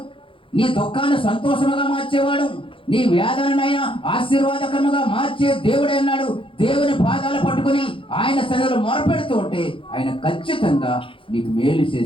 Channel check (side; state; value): right; late; 0.25 ms